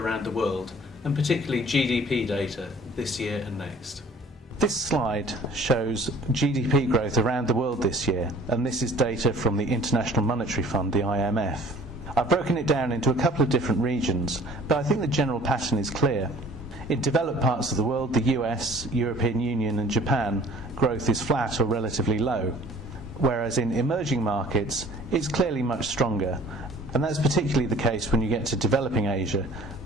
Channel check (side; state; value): both; normal; correlation 0.51